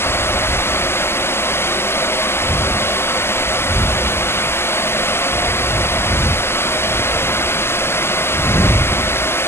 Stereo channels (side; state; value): right; late; 0.12 ms